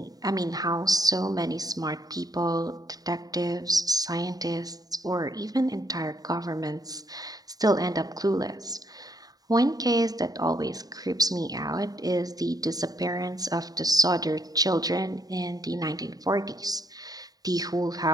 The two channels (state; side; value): late; left; 0.18 ms